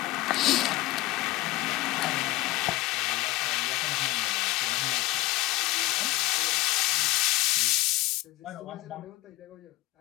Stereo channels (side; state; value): right; quieter; 19.5 dB